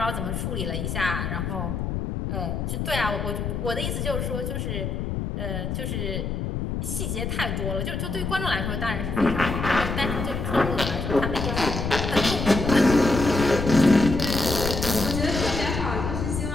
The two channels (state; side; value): noise; left; rumble, 3 dB below the sound